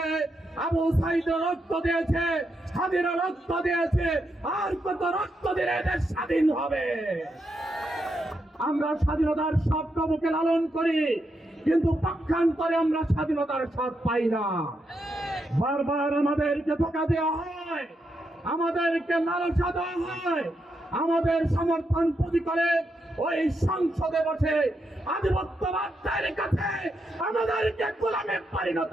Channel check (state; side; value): normal; both; correlation 0.82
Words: আবু সাইদ রক্ত দিয়েছে, স্বাধীন রক্ত দিয়েছে। আর কত রক্ত দিলে দেশ স্বাধীন হবে? আমরা স্বাধীনতার স্বপ্ন বুকে লালন করি, কিন্তু পক্ষান্তরে আমরা স্বাধীনতার স্বাদ পাই না। বারবার আমাদেরকে ধোঁকা দেওয়া হয়, আমাদেরকে লালসা দেওয়া হয়, আমাদের সমর্থন পুঁজি করে ওই সংসদে বসে আধিপত্যবাদের কাছে আমাদেরকে গোলামে পরিণত